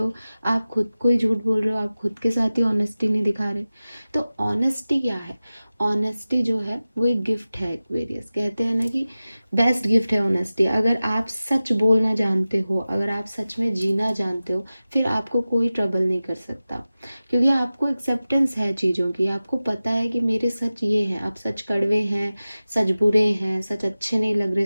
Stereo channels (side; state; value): both; inverted; correlation -0.95